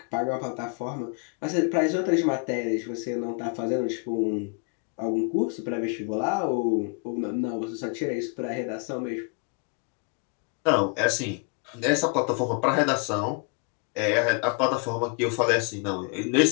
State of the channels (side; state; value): right; quieter; 36.5 dB